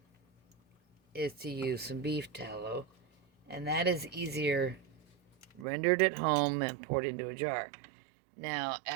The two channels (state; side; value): drops out; left; at 5.7 s